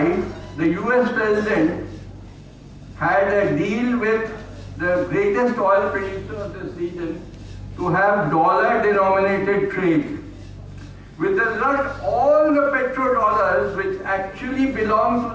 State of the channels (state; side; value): identical; both; correlation 1.00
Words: the US president had a deal with the greatest oil producer of this region to have dollar-denominated trade. With the result, all the petrodollars, which actually belong to